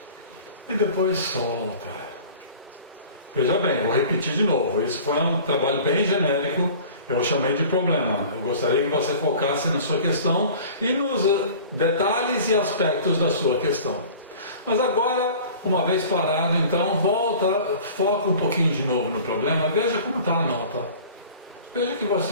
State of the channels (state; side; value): inverted; both; correlation -0.43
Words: e depois solta. Veja bem, vou repetir de novo, isso foi um trabalho bem genérico, eu chamei de problema. Eu gostaria que você focasse na sua questão e nos detalhes e aspectos da sua questão. Mas agora, uma vez parado, então, volta, foca um pouquinho de novo no problema, veja como está a nota. Veja o que